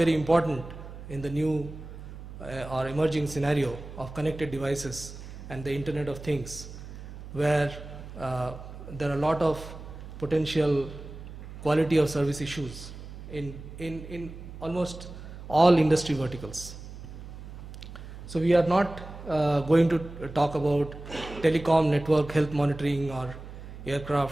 important in the new or emerging scenario of connected devices and the Internet of Things, where there are a lot of potential quality of service issues in almost all industry verticals. So we are not going to talk about telecom network health monitoring or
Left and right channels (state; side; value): noise; right; hum, 13 dB below the sound